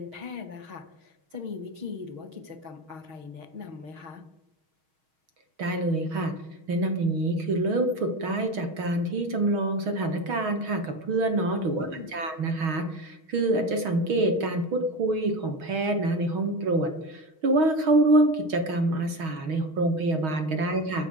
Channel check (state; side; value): late; left; 6.4 ms